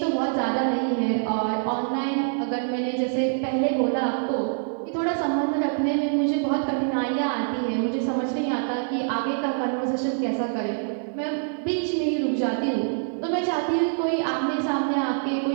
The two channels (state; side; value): silent; left; 62 dB below the other